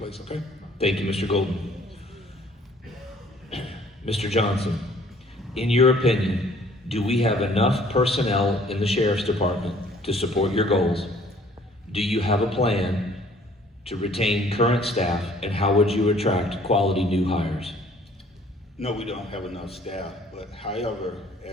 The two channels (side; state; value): both; normal; correlation 0.57